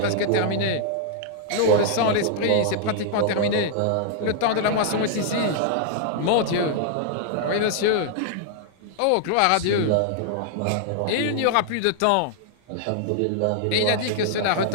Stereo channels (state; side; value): different; both; correlation 0.00